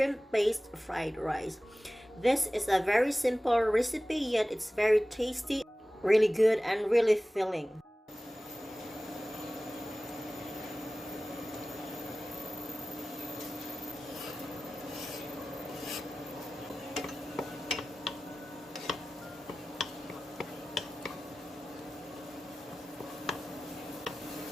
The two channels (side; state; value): both; normal; correlation 0.97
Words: fried rice. This is a very simple recipe, yet it's very tasty, really good, and really filling.